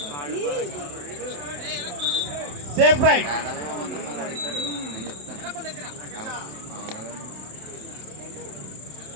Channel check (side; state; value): left; late; 27 ms